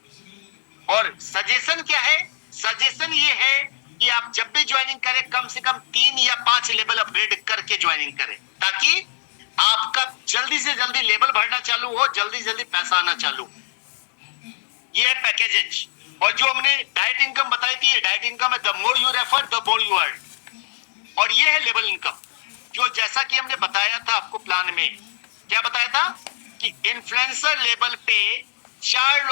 और सजेशन क्या है? सजेशन ये है कि आप जब भी ज्वाइनिंग करें, कम से कम 3 या 5 लेवल अपग्रेड करके ज्वाइनिंग करें, ताकि आपका जल्दी से जल्दी लेवल बढ़ना चालू हो, जल्दी जल्दी पैसा आना चालू। ये है पैकेजेज। और जो हमने डाइट इनकम बताई थी, ये डाइट इनकम है, the more you refer the more you earn. और ये है लेवल इनकम, जो जैसा कि हमने बताया था आपको प्लान में। क्या बताया था? कि इन्फ्लुएंसर लेवल पे 4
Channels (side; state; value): right; silent; digital silence